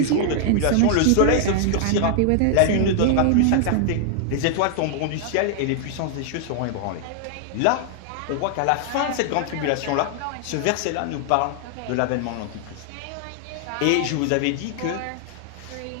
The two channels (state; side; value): different; both; correlation 0.00